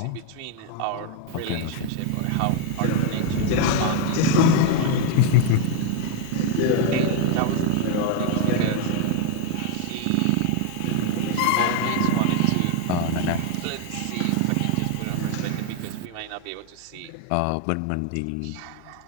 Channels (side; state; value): both; different; correlation 0.01